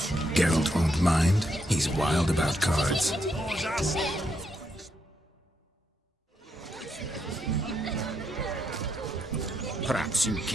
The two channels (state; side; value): normal; both; correlation 0.79